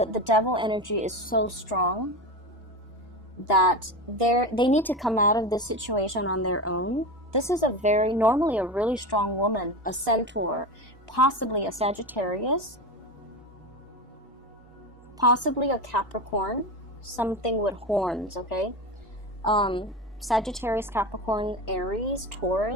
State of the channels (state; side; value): normal; both; correlation 0.22